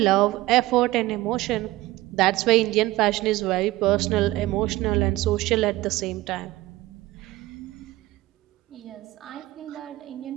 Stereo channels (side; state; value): left; quieter; 18.0 dB